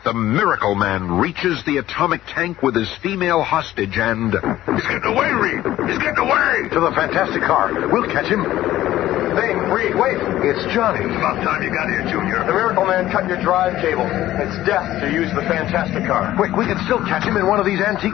the Miracle Man reaches the atomic tank with his female hostage and... He's getting away, Reed! He's getting away! To the Fantastic car. We'll catch him. Thing, Reed, wait. It's Johnny. It's about time you got here, Junior. The Miracle Man cut your drive cable. It's death to use the Fantastic car. Quick, we can still catch him in one of these antique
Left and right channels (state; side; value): quieter; right; 14.3 dB